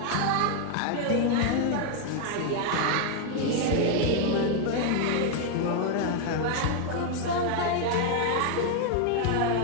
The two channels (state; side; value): different; both; correlation 0.00